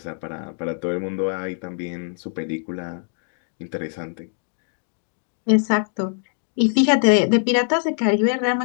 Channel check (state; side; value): silent; right; digital silence